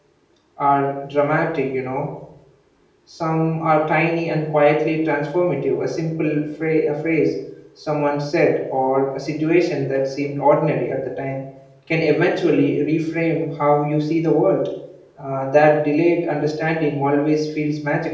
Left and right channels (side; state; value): both; identical; correlation 1.00